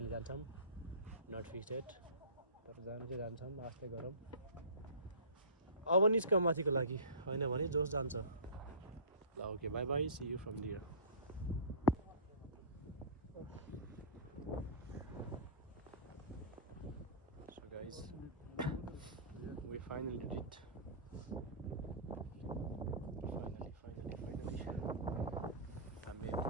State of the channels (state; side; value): inverted; both; correlation -0.34